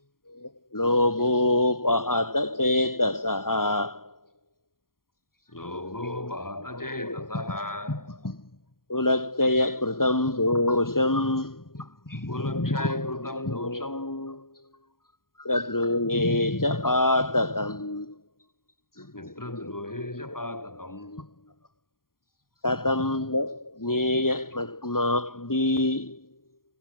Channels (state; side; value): late; right; 0.92 ms